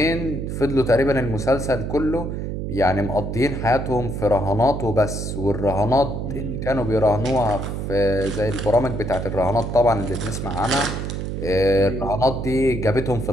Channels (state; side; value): noise; right; hum, 4 dB below the sound